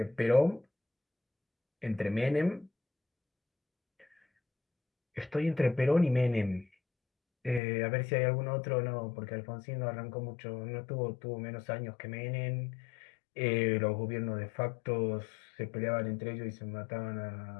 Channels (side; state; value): right; drops out; at 7.6 s